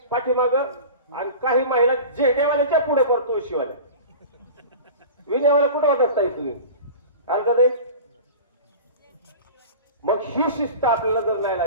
पाठीमाग आणि काही महिला जेडेवाल्याच्या पुढे करतो शिवाल्या. विनेवाल्या कुठे होतात ताई तुम्ही का नाही? मग ही शिस्त आपल्याला जर नाही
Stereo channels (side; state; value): both; inverted; correlation -0.35